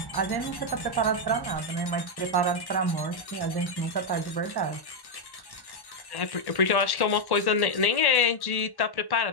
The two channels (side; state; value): right; late; 1.1 ms